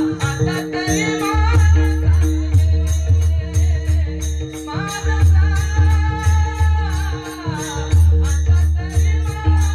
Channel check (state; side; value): identical; both; correlation 1.00